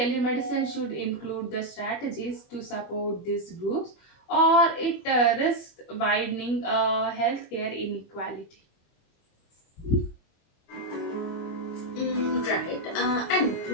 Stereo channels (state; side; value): late; right; 25 ms